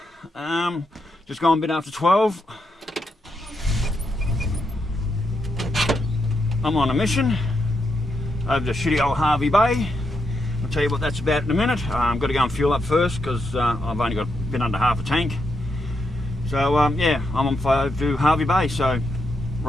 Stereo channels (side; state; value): both; normal; correlation 0.82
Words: just gone a bit after 12. I'm on a mission over to shitty old Harvey Bay. I'll tell you what that's about in a minute. I've got to go and fuel up first because I've only got a bit under half a tank. So yeah, I'm on fire to Harvey Bay, so